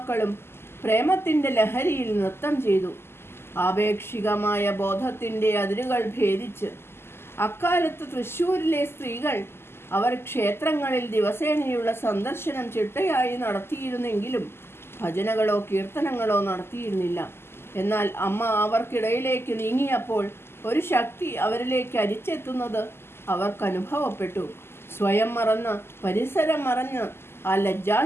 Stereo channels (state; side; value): late; right; 0.12 ms